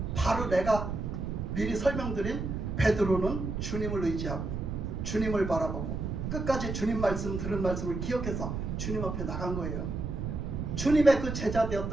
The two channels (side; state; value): right; noise; rumble, 3 dB below the sound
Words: 바로 내가 미리 설명드린 베드로는 주님을 의지하고 주님을 바라보고 끝까지 주님 말씀 들은 말씀을 기억해서 주님 앞에 나간 거예요. 주님의 그 제자